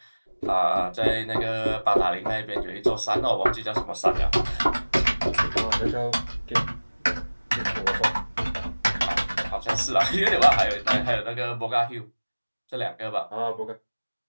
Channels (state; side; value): inverted; both; correlation -1.00